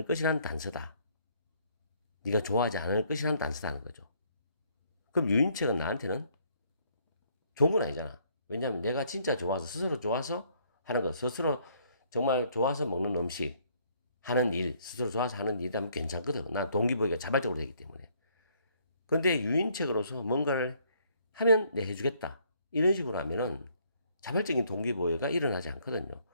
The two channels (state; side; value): inverted; both; correlation -0.66